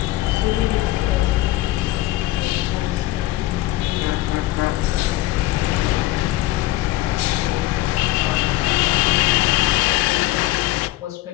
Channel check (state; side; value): quieter; right; 17.1 dB